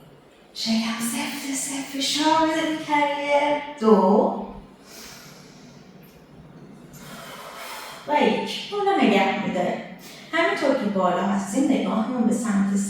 شکم سفت فشار بده به کریر. دو و یک. بالا نگه میداره. همینطور که بالا هستیم نگاهمون به سمت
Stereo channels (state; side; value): identical; both; correlation 1.00